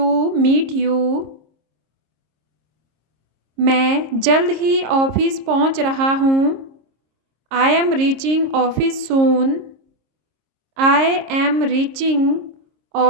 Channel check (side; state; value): left; late; 26 ms